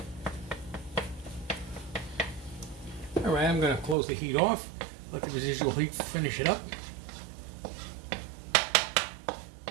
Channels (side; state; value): left; drops out; at 4.0 s